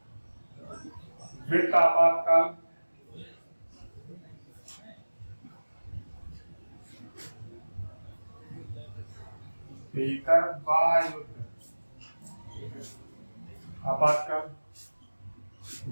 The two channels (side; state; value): both; inverted; correlation -1.00